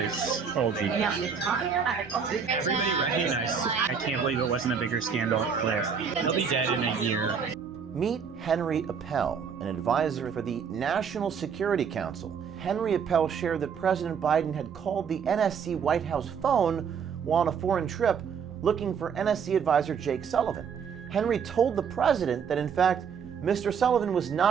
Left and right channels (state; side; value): quieter; left; 6.6 dB